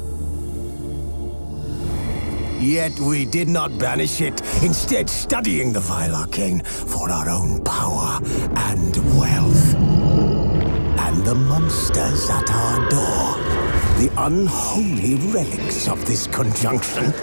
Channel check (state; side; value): inverted; both; correlation -1.00